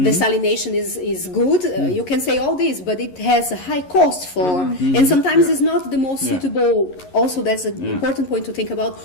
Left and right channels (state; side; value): late; right; 11 ms